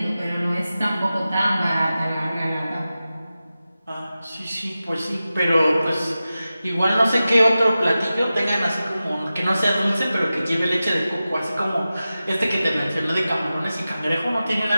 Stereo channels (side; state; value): both; inverted; correlation -0.94